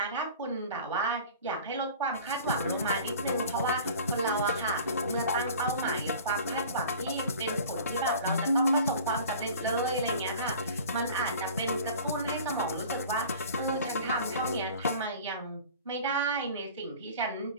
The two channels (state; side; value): inverted; both; correlation -0.42